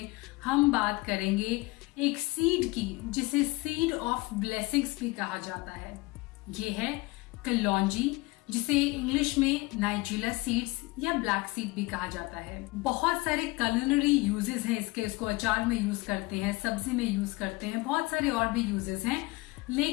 हम बात करेंगे एक सीड की जिसे सीड ऑफ ब्लेसिंग्स भी कहा जाता है। ये है कलौंजी, जिसे इंग्लिश में नाइजीला सीड्स या ब्लैक सीड भी कहा जाता है। बहुत सारे culinary यूजेस हैं इसके। इसको अचार में यूज करते हैं, सब्जी में यूज करते हैं, बहुत सारे और भी यूजेस हैं,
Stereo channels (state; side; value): quieter; right; 22.5 dB